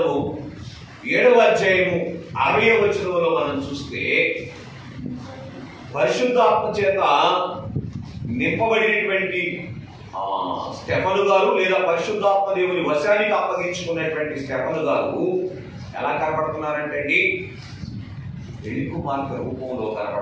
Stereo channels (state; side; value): identical; both; correlation 1.00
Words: 7వ అధ్యాయము 60వ వచనంలో మనం చూస్తే పరిశుద్ధాత్మ చేత నింపబడినటువంటి స్టెఫను గారు, లేదా పరిశుద్ధాత్మ దేవుని వశానికి అప్పగించుకున్నటువంటి స్టెఫను గారు ఎలా కనపడుతున్నారంటే అండి, పెళ్లి కుమార్తె రూపంలో